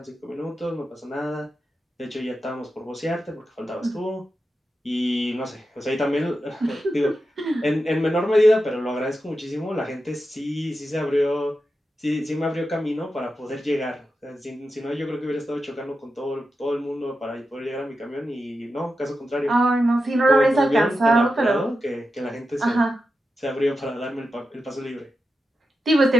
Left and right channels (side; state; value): both; normal; correlation 0.90